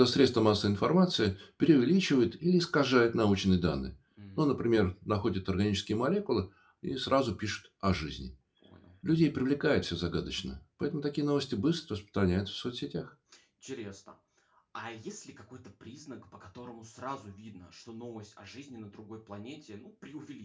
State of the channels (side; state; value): both; identical; correlation 1.00